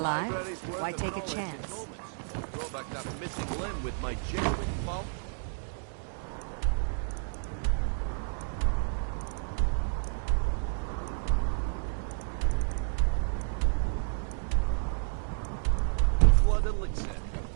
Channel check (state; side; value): silent; left; digital silence